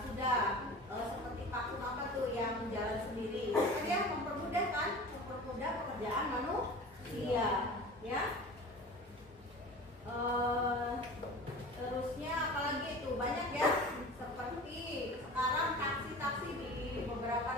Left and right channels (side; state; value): both; normal; correlation 0.37